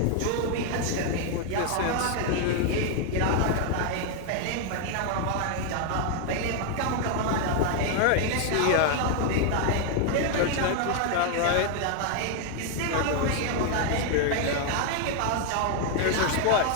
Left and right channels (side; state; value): both; different; correlation 0.00